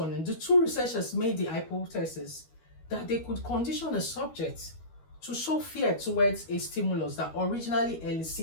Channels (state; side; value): late; right; 12 ms